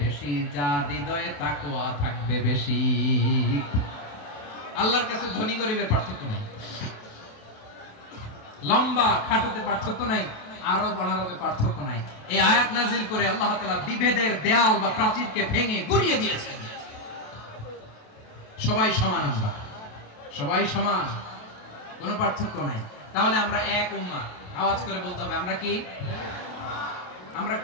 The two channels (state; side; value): late; right; 28 ms